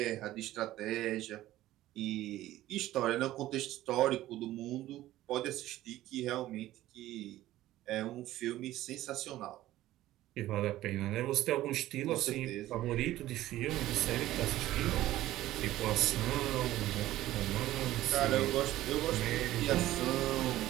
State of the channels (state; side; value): quieter; left; 15.0 dB